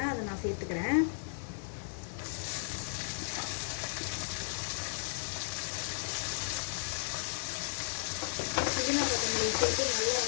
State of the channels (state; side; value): silent; right; 55 dB below the other